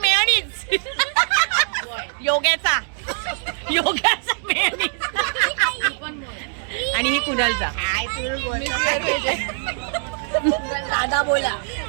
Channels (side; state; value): left; silent; 64 dB below the other